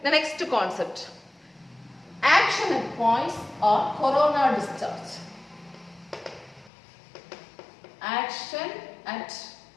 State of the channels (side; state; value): right; drops out; at 6.7 s